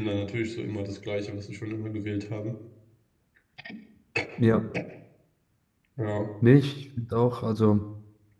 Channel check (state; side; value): identical; both; correlation 1.00